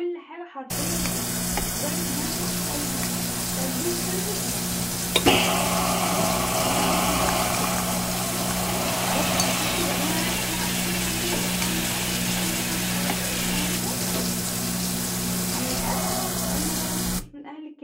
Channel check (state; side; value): identical; both; correlation 1.00